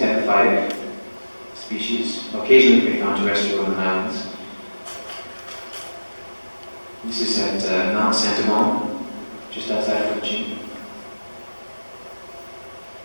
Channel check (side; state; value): both; inverted; correlation -1.00